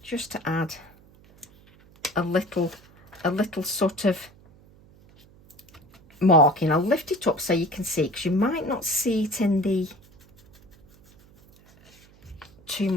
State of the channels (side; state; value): right; noise; hum, 26 dB below the sound